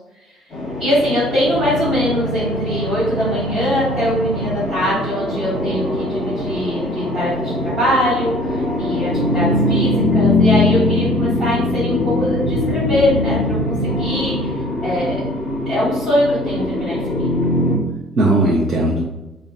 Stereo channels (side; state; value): both; normal; correlation 0.51